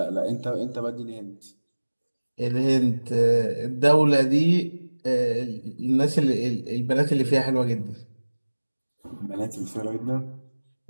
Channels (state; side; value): inverted; both; correlation -1.00